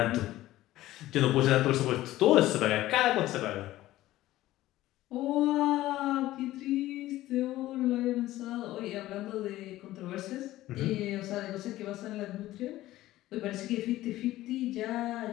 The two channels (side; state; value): right; quieter; 15.7 dB